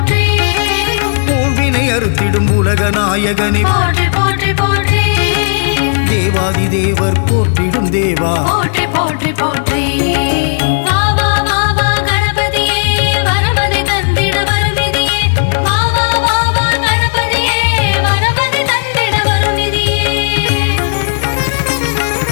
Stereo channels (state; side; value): silent; right; digital silence